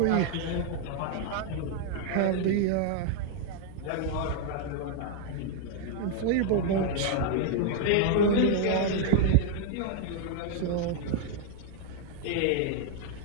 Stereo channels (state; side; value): different; both; correlation 0.00